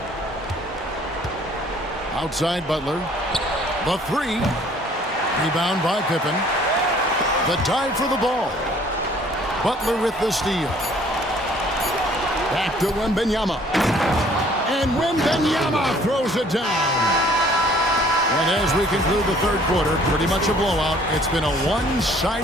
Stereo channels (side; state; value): both; normal; correlation 0.57